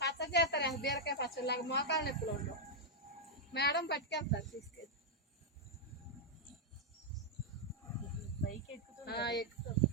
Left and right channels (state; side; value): normal; both; correlation -0.04